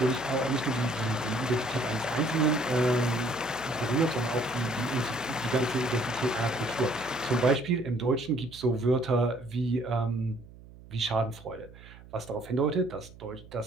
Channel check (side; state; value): right; noise; hum, 20 dB below the sound